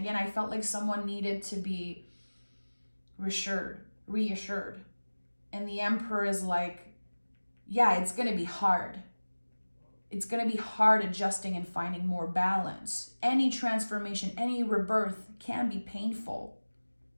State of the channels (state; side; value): inverted; both; correlation -1.00